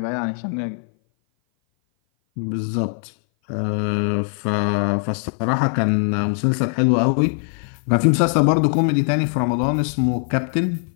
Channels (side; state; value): right; silent; 58 dB below the other